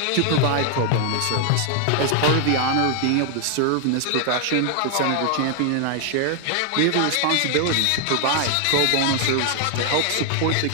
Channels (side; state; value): both; different; correlation 0.00